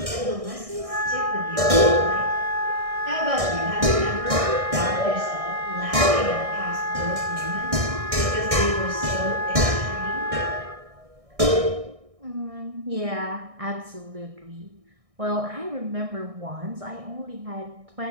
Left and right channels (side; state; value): left; late; 1.6 ms